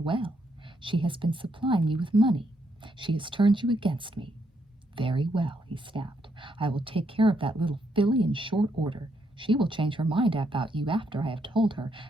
She has been supplying you with money. She has turned you against me." "Very well," he snapped. "I will take care of that little filly in short order. She will change her mind about you after I have told her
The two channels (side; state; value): both; normal; correlation 0.76